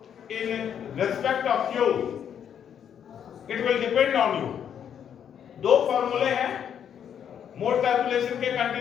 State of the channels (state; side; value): quieter; right; 8.7 dB